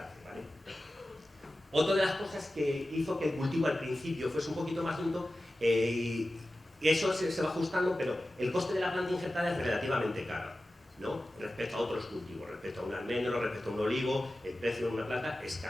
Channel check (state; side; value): normal; both; correlation 0.95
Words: ¿vale? Otra de las cosas que hizo que el cultivo al principio fuese un poquito más lento, y eso se va ajustando, pero el coste de la planta injertada es relativamente caro, ¿no? Respecto a otros cultivos, respecto a un almendro, respecto a un olivo, el precio de una planta es